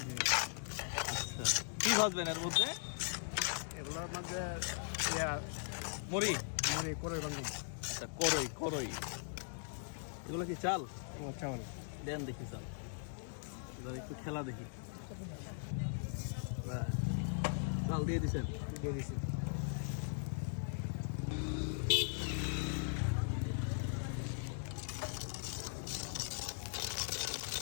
আচ্ছা, কি ভাজবেন এর মধ্যে? এগুলোর মধ্যে মুড়ি। মুড়ি করে বাংলা। আচ্ছা, করই করই। এগুলো কি চাল? ও চাউল দেন দেখি চাল। এবার একটু খেলা দেখি। বাহ, চাল দিয়ে দিছেন। দিয়ে দিছি।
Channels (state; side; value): silent; right; digital silence